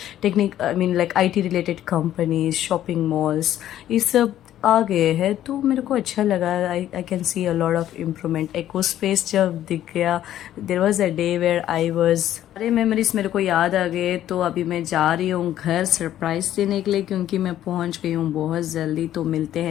technique I mean like IT related companies, shopping malls, ये सब आ गए हैं। तो मेरे को अच्छा लगा। I can see a lot of improvement. Eco space जब दिख गया, there was a day where I was, सारे मेमोरीज मेरे को याद आ गए। तो अभी मैं जा रही हूँ घर सरप्राइज देने के लिए, क्योंकि मैं पहुँच गई हूँ बहुत जल्दी। तो मिलते हैं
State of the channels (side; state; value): right; quieter; 12.1 dB